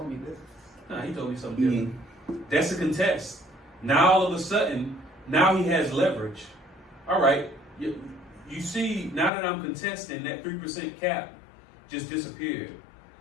me this. nah, he told me something different. That's a contest. Now all of a sudden, now he has leverage. All right, you see, now that I'm contesting, that 3% cap just disappeared.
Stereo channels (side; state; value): right; drops out; at 9.3 s